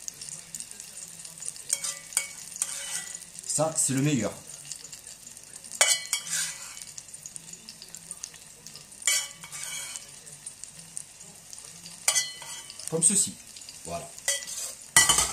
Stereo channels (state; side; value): identical; both; correlation 1.00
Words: Ça, c'est le meilleur. Comme ceci. Voilà.